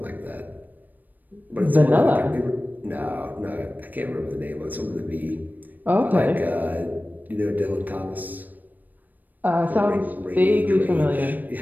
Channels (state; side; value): late; left; 0.087 ms